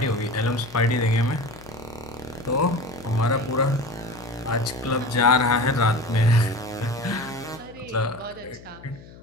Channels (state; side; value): noise; left; hum, 19 dB below the sound